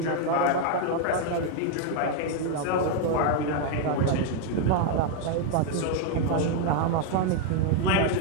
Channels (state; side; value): different; both; correlation 0.00